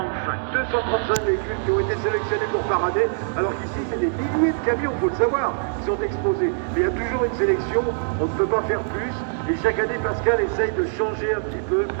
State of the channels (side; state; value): left; silent; digital silence